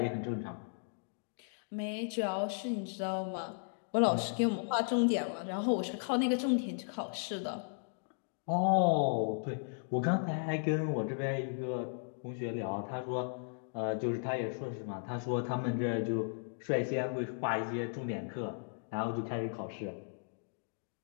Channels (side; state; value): right; silent; digital silence